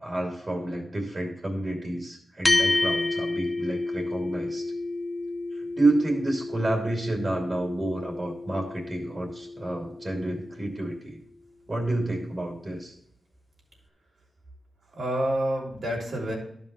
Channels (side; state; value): both; normal; correlation 0.93